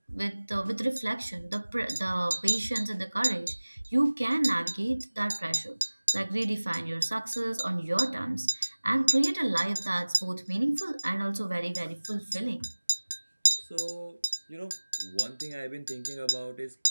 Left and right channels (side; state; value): both; inverted; correlation -1.00